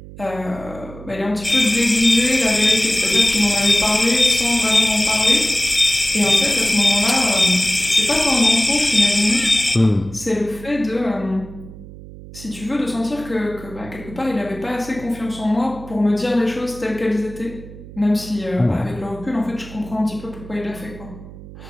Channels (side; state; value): right; noise; hum, 16 dB below the sound